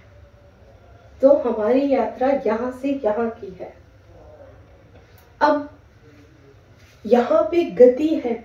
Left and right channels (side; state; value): both; identical; correlation 1.00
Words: तो हमारी यात्रा यहाँ से यहाँ की है। अब यहाँ पे गति है,